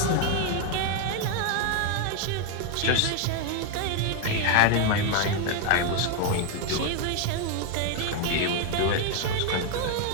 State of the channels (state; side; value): different; both; correlation 0.01